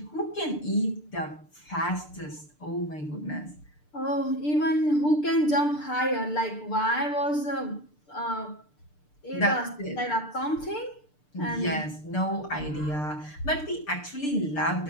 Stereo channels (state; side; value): late; right; 6.7 ms